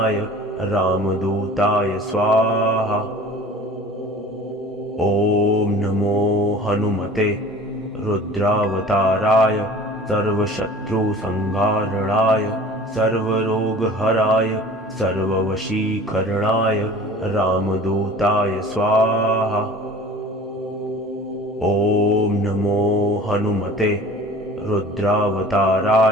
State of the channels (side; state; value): both; normal; correlation 0.44